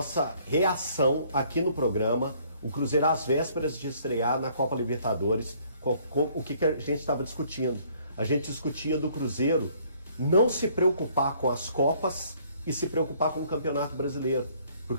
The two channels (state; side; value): inverted; both; correlation -0.62